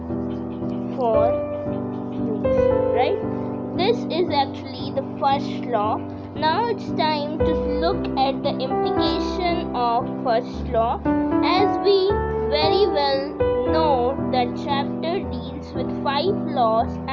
for use, right? This is actually the first law. Now it's time to look at the implication of first law. As we very well know, that chapter deals with 5 laws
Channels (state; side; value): identical; both; correlation 1.00